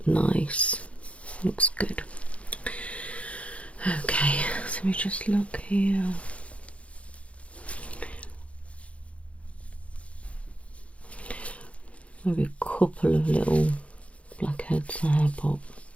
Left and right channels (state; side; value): late; right; 0.063 ms